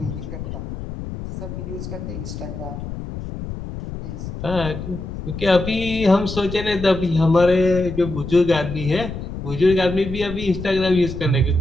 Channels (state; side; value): noise; left; rumble, 8 dB below the sound